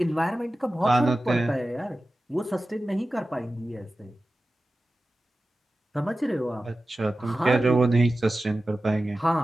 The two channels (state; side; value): normal; both; correlation 0.95